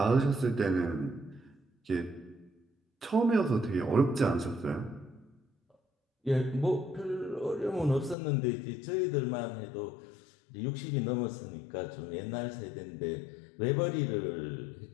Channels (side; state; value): right; drops out; at 8.2 s